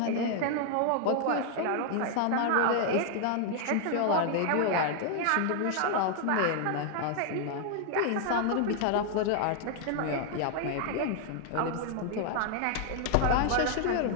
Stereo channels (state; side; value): different; both; correlation 0.00